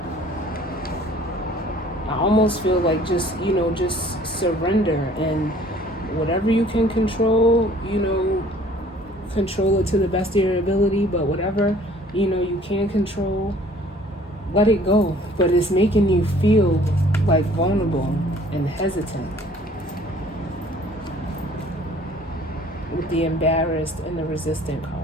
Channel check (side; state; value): both; normal; correlation 0.54